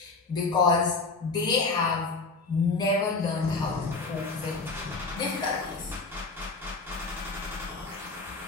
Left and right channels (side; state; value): right; quieter; 3.9 dB